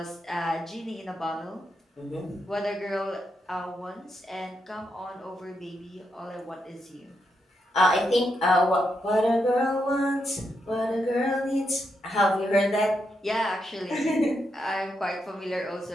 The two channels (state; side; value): normal; both; correlation 0.82